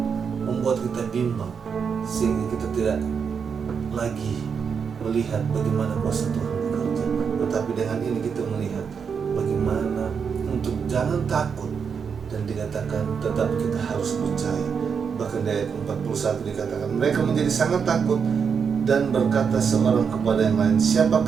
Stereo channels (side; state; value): left; quieter; 6.4 dB